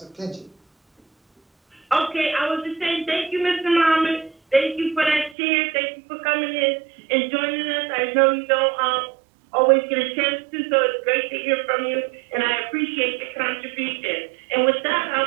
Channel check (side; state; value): left; drops out; at 5.4 s